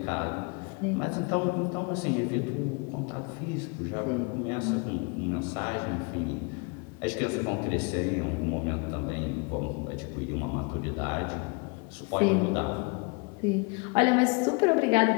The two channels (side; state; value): right; quieter; 32.7 dB